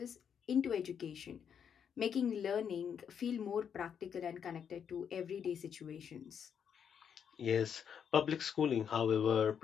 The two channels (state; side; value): quieter; right; 7.7 dB